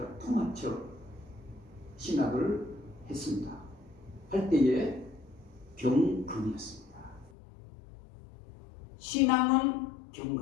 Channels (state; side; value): drops out; right; at 7.3 s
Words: 통합적 신학을 했습니다. 할 때에 경건이었습니다. 신앙은